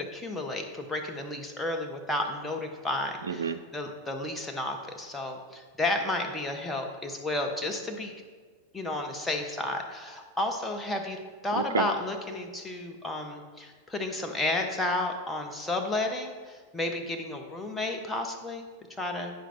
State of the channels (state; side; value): normal; both; correlation 0.34